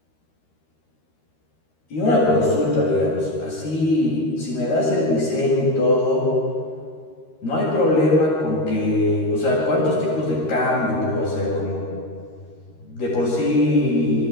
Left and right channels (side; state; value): right; late; 13 ms